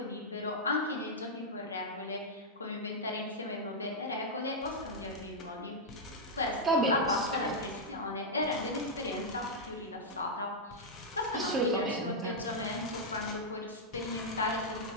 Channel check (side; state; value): both; normal; correlation -0.05